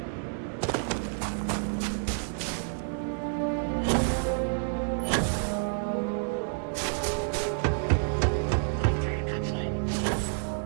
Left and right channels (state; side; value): silent; left; digital silence